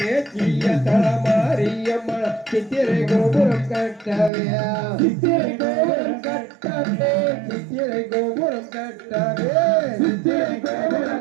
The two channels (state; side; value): drops out; left; at 4.3 s